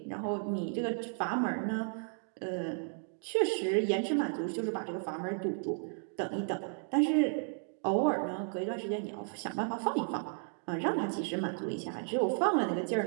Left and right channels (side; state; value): left; silent; 55 dB below the other